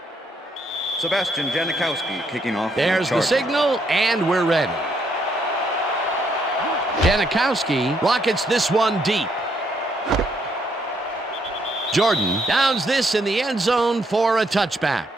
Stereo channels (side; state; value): both; normal; correlation 0.73